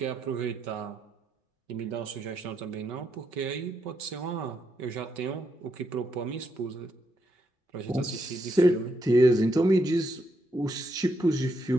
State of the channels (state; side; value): normal; both; correlation 0.80